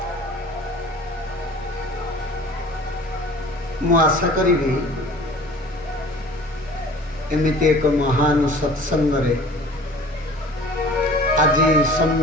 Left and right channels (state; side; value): normal; both; correlation 0.45